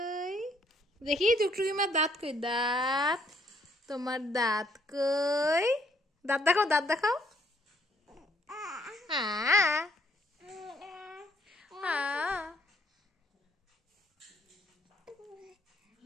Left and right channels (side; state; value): both; normal; correlation 0.67